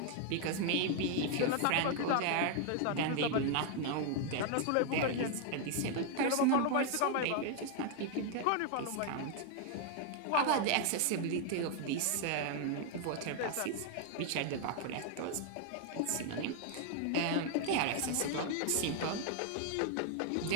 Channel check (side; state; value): both; different; correlation 0.00